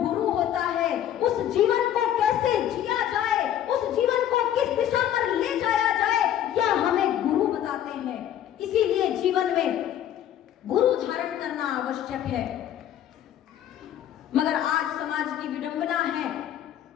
होता है उस जीवन को कैसे जिया जाए, उस जीवन को किस दिशा पर ले जाया जाए, यह हमें गुरु बताते हैं। इसीलिए जीवन में गुरु धारण करना आवश्यक है। मगर आज समाज की विडंबना है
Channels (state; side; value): quieter; right; 10.9 dB